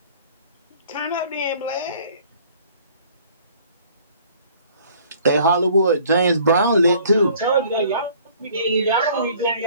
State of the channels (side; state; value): both; inverted; correlation -0.55